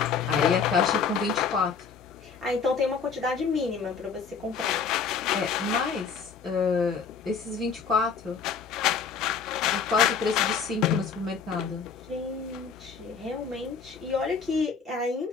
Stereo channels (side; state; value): right; quieter; 5.8 dB